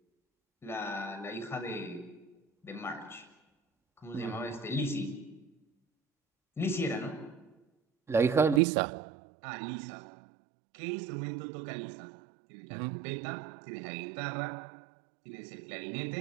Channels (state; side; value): drops out; left; at 8.6 s